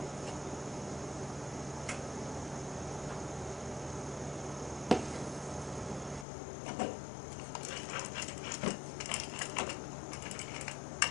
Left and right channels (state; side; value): drops out; right; at 6.2 s